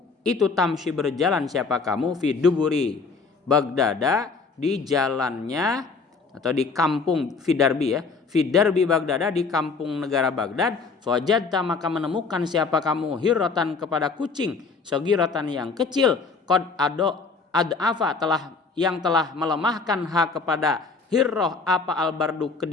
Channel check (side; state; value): right; quieter; 4.6 dB